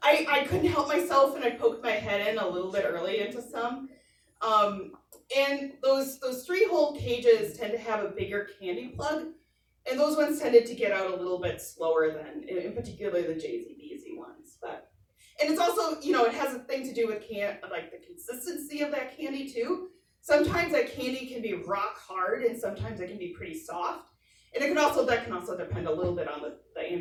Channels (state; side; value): identical; both; correlation 1.00